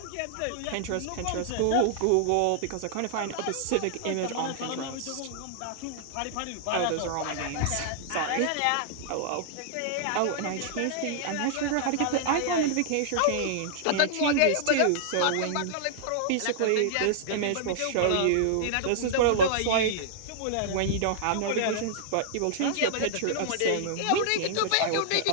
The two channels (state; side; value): different; both; correlation -0.01